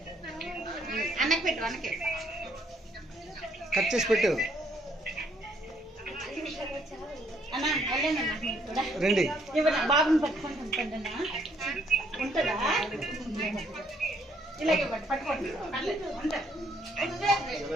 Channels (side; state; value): both; normal; correlation 0.68